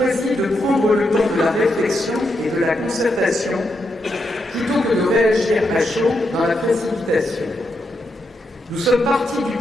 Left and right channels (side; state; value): both; normal; correlation 0.82